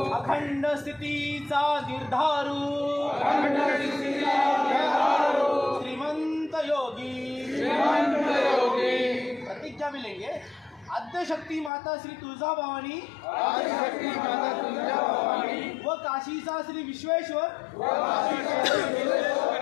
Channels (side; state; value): right; drops out; at 11.7 s